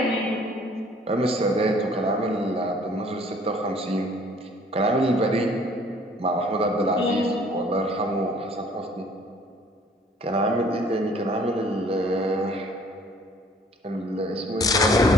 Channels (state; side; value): normal; both; correlation 0.56